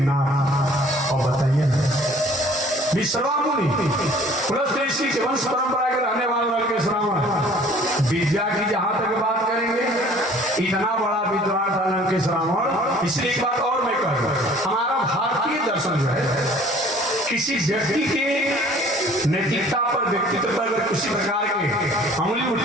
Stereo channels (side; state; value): both; normal; correlation 0.53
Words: और बताइए विश्रवा मुनि पुलस्त ऋषि के वंश परंपरा के रहने वाले लंकेश रावण। विद्या की जहां तक बात करेंगे, इतना बड़ा विद्वान था लंकेश रावण। इसलिए एक बात और मैं कहूँ, हमारा भारतीय दर्शन जो है, किसी व्यक्ति के नैतिकता पर, व्यक्तित्व पर अगर किसी प्रकार की उंगली